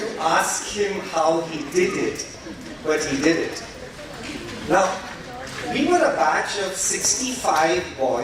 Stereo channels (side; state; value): both; identical; correlation 1.00